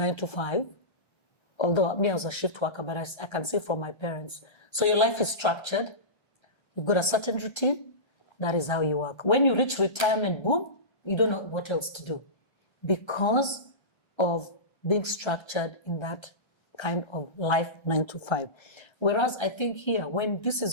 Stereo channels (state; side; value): late; right; 1.3 ms